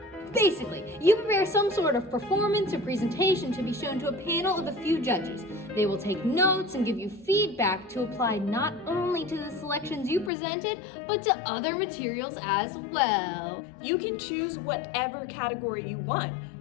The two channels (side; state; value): right; drops out; at 10.3 s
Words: Basically, you prepare some sort of performance or presentation to be shown to a panel of a few judges. They will take notes and give you feedback to apply not only to the selections you presented, but to other materials as well. You can choose whatever category you want,